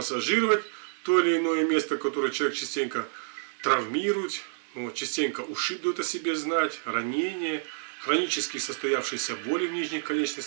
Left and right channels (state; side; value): silent; left; 59 dB below the other